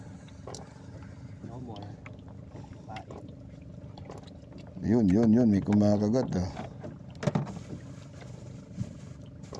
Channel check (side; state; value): both; identical; correlation 1.00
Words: No more. Pain. Yun. May kumakagat ah.